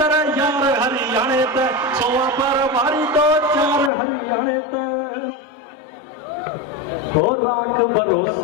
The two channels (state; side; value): drops out; right; at 3.9 s